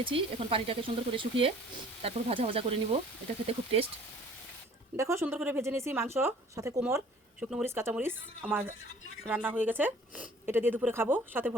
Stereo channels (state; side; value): normal; both; correlation 0.52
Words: এখন পানিটাকে সুন্দর করে শুকিয়ে তারপর ভাজা ভাজা করে নিব। এটা খেতে খুব টেস্ট। দেখো, সুন্দর করে ভেজে নিয়েছি মাংস, সাথে কোমর, শুকনো মরিচ, কাঁচামরিচ। আমার রান্না হয়ে গেছে, এটা দিয়ে দুপুরে খাবো, সাথে